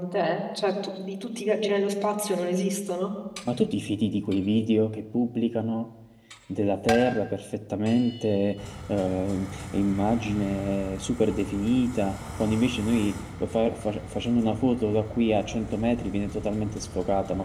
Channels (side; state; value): both; identical; correlation 1.00